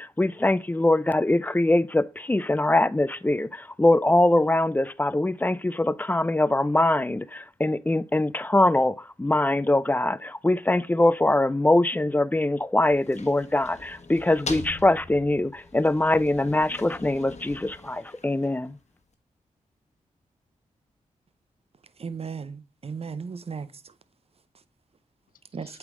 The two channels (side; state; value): both; normal; correlation 0.92